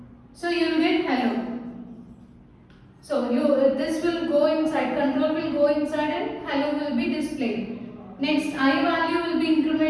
so you will get hello. So this will go inside, control will go inside and hello will be displayed. Next, I value will be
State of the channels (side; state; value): both; identical; correlation 1.00